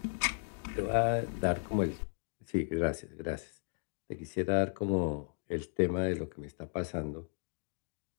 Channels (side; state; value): right; silent; digital silence